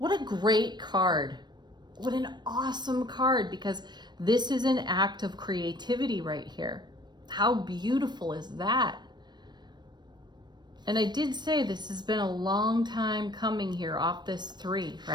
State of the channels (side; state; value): left; late; 0.21 ms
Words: a great card. What an awesome card, because this is an act of creativity right here. How beautiful is that? And I did say this has been a long time coming here off this 3,